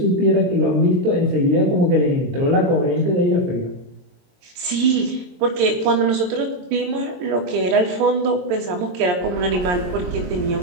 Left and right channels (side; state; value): left; late; 22 ms